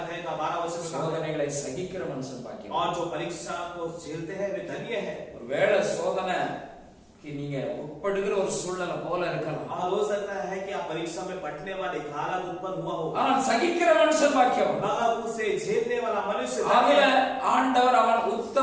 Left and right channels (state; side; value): identical; both; correlation 1.00